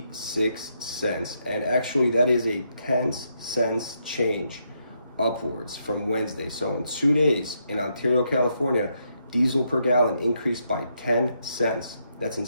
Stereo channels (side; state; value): both; inverted; correlation -0.78